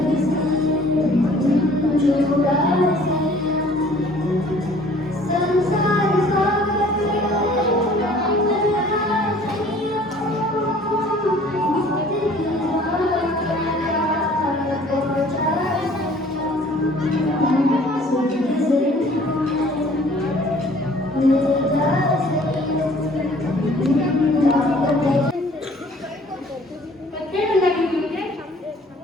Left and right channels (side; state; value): both; normal; correlation 0.53